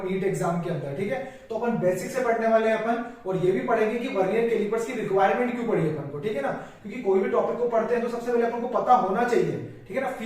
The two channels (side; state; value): both; identical; correlation 1.00